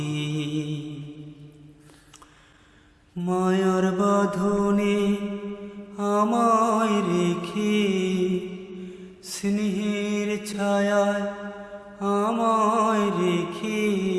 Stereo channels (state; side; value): identical; both; correlation 1.00